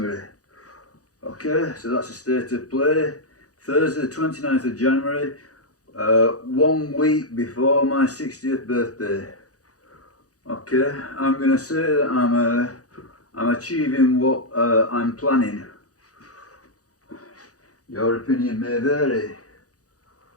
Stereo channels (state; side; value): late; right; 0.67 ms